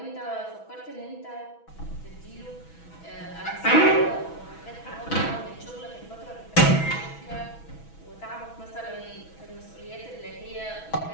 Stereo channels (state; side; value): late; right; 6.1 ms